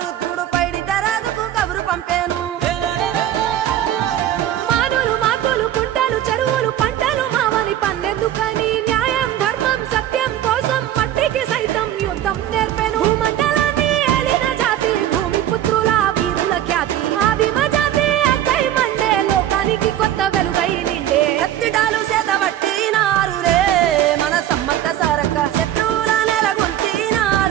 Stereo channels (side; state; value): left; quieter; 11.8 dB